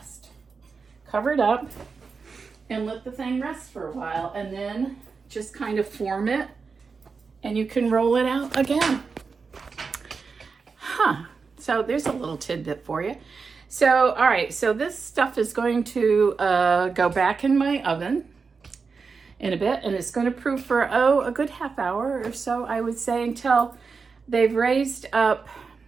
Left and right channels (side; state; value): left; quieter; 5.0 dB